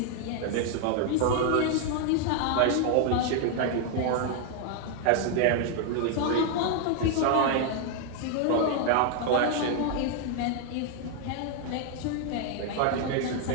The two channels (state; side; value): different; both; correlation 0.00